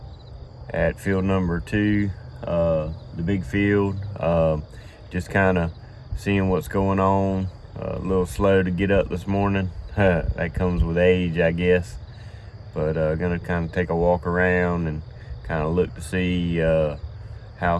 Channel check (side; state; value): both; identical; correlation 1.00